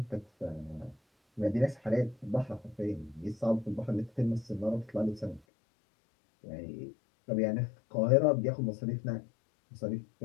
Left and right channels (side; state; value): right; drops out; at 5.4 s